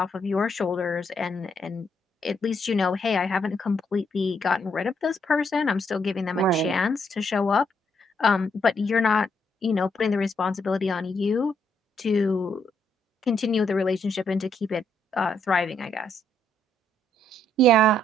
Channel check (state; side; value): normal; both; correlation 0.74